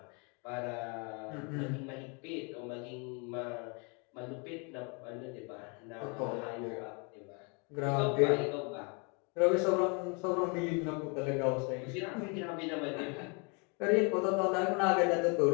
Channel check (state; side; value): quieter; right; 34.0 dB